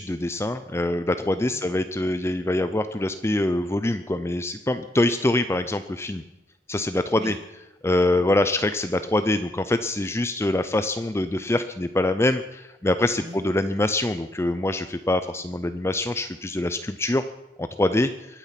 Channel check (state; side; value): normal; both; correlation 0.73